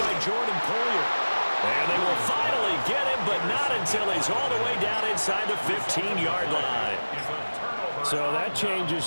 by Jordan Poyer. And they will finally get him, but not until he's all the way down inside the 15-yard line. So that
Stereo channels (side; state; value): both; inverted; correlation -1.00